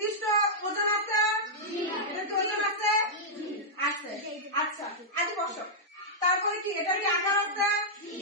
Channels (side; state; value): both; normal; correlation -0.08